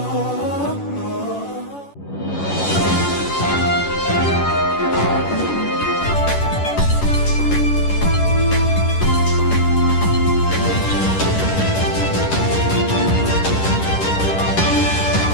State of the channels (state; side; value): late; right; 11 ms